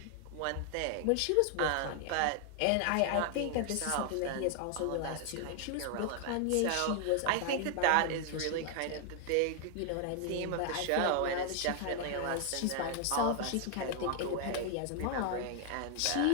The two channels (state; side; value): different; both; correlation 0.00